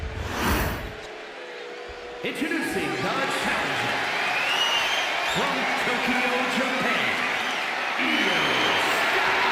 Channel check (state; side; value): identical; both; correlation 1.00